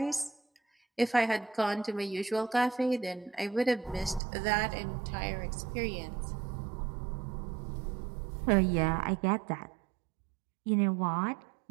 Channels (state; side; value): drops out; left; at 4.2 s